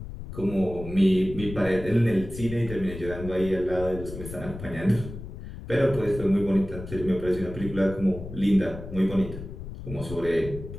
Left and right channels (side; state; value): left; noise; rumble, 11 dB below the sound